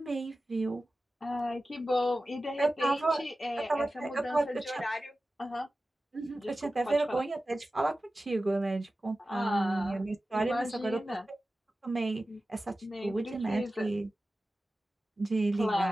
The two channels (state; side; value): normal; both; correlation 0.95